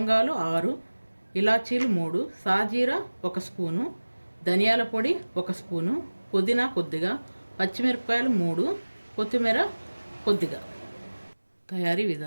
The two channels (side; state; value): both; inverted; correlation -1.00